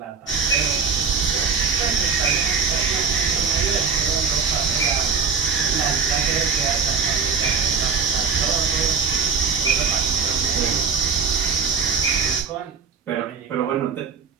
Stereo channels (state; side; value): quieter; left; 5.6 dB